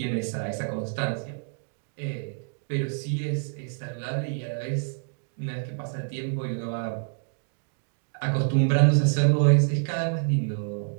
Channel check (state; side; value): silent; left; 60 dB below the other